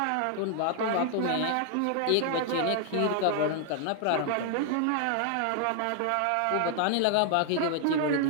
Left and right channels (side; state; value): both; different; correlation 0.00